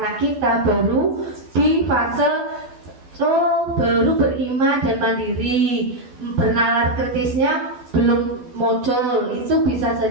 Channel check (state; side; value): late; left; 12 ms